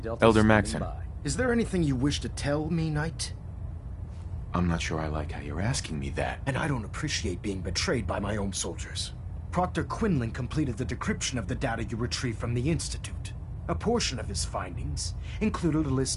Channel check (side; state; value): both; identical; correlation 1.00